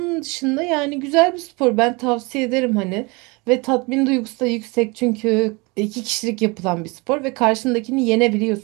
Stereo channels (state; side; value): quieter; left; 27.1 dB